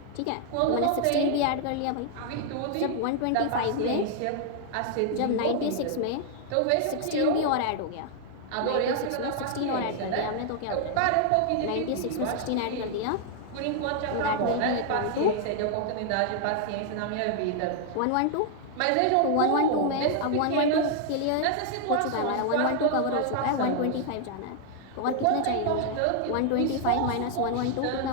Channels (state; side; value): different; both; correlation 0.00